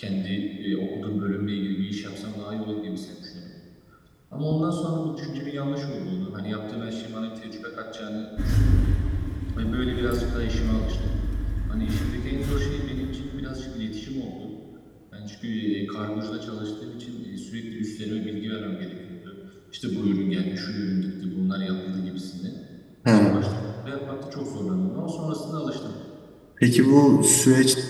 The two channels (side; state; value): both; identical; correlation 1.00